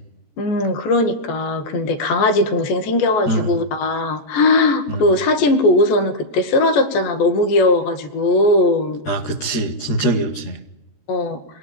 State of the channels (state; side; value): late; right; 13 ms